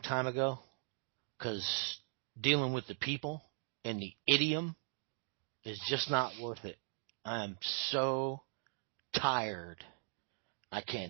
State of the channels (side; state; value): left; silent; 51 dB below the other